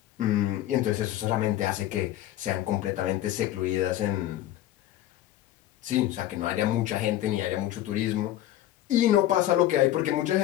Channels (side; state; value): right; quieter; 13.5 dB